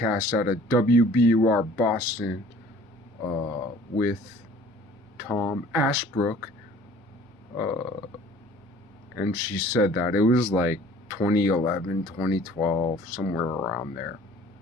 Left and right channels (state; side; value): normal; both; correlation 0.51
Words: out of WBUR Boston, with Tom Ashbrook, and she said that it was like 2011, 2012, somewhere around there.